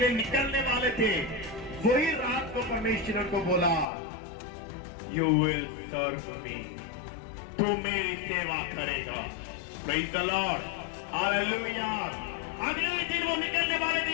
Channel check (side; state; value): right; drops out; at 3.9 s